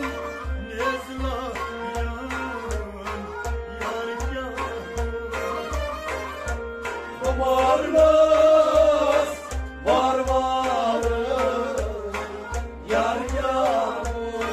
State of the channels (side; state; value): both; identical; correlation 1.00